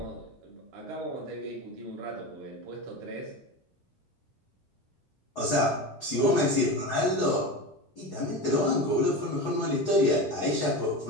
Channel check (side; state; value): both; normal; correlation 0.25